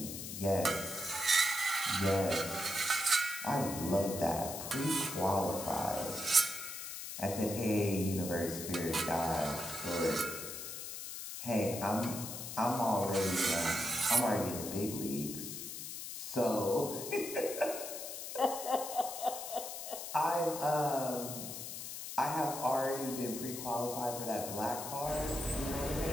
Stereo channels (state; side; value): noise; left; hiss, 7 dB below the sound